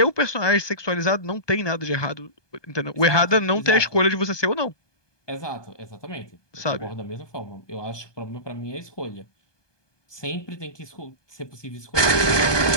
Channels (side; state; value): right; late; 1.2 ms